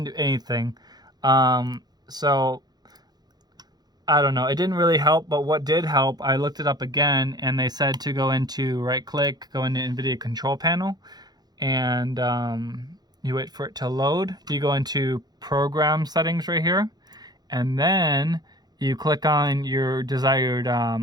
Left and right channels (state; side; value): late; left; 0.19 ms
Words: do anything. So I don't know. It didn't really help, but what did help, I looked it up again, and they said to go into right-click, go into Nvidia control panel, and you wait for it to load. You go into program settings right here, and then you click on your desired